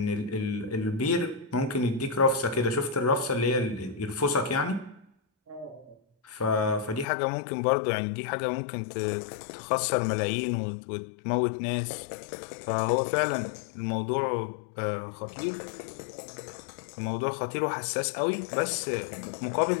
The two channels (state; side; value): drops out; right; at 7.1 s